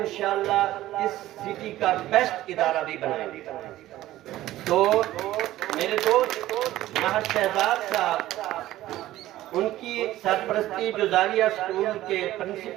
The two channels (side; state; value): left; quieter; 15.0 dB